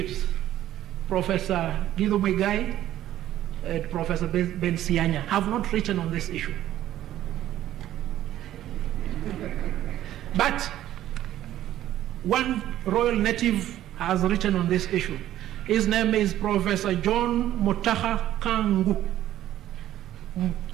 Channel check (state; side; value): quieter; left; 12.9 dB